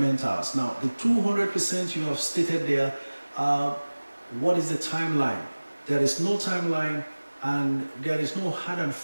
Now, the 200% you have stated there, what is the timeline? There is no timeline and there is no hard and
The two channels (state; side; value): inverted; both; correlation -1.00